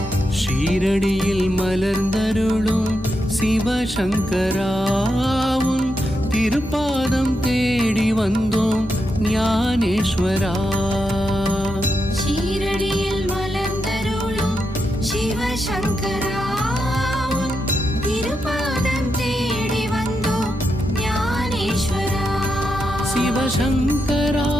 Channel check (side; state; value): both; normal; correlation 0.85